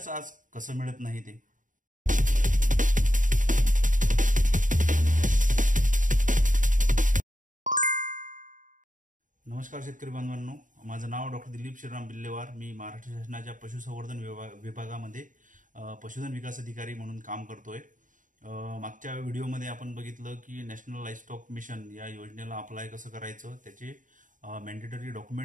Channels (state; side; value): late; left; 0.38 ms